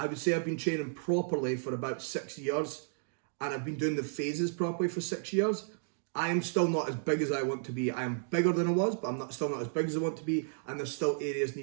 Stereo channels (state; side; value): silent; left; digital silence